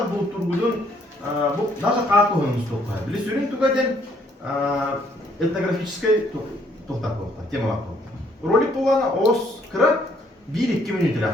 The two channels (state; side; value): normal; both; correlation 0.66